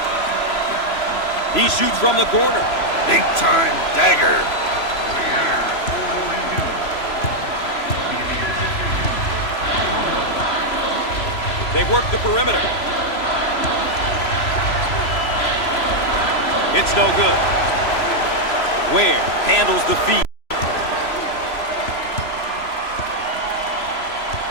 He shoots from the corner. Big time dagger. They work the perimeter. It's no good. Ware handles the feed.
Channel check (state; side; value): late; right; 3.0 ms